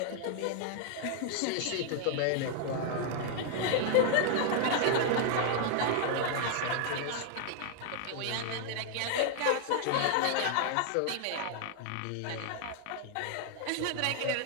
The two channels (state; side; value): different; both; correlation 0.00